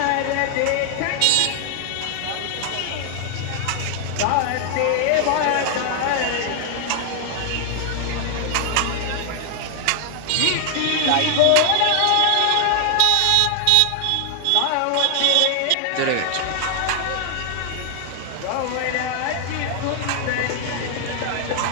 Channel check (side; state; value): both; different; correlation 0.00